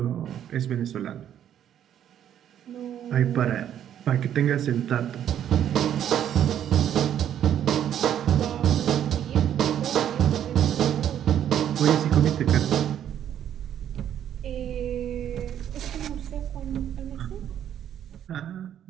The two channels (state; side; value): quieter; left; 10.2 dB